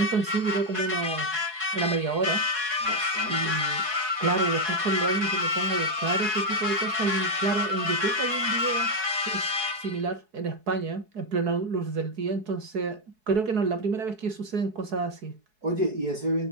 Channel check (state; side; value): late; left; 4.7 ms